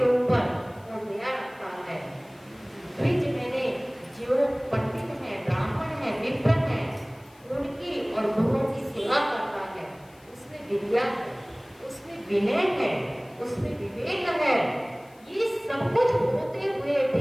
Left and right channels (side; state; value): left; noise; hiss, 29 dB below the sound